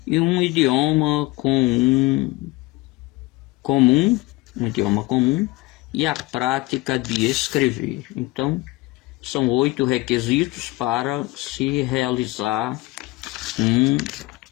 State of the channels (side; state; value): right; quieter; 20.6 dB